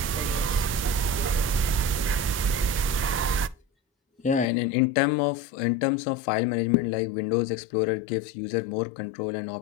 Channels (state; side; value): drops out; right; at 4.5 s